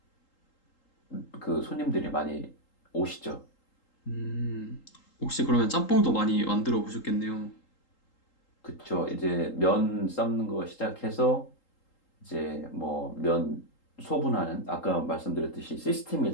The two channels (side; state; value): right; late; 3.8 ms